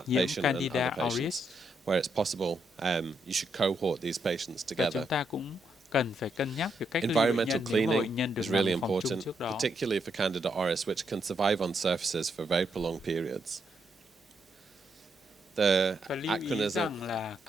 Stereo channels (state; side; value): normal; both; correlation 0.78